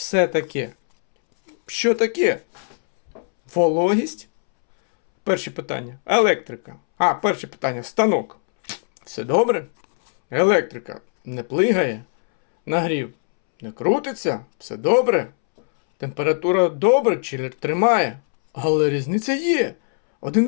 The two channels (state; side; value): silent; right; 65 dB below the other